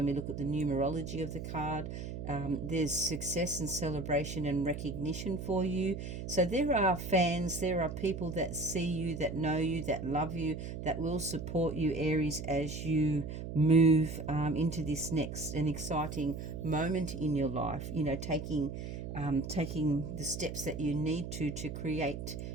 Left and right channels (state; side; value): noise; right; hum, 7 dB below the sound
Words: we look at the numerology of the card. There's success and celebration and recognition for you. So there are fans, there are people that see you, that know you, that love you, that will support you, Aries, as you move into this next and exciting moment in your life. Taking the steps that you need to create